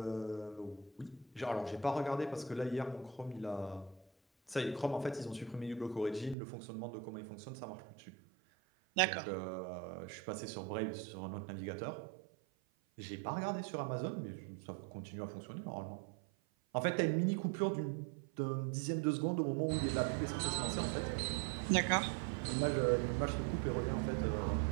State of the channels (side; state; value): left; drops out; at 6.4 s